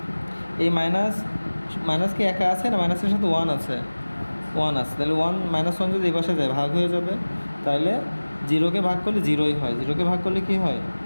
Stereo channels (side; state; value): both; inverted; correlation -1.00